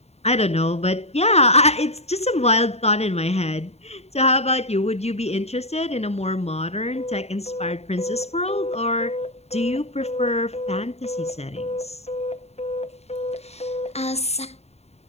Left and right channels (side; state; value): right; late; 0.31 ms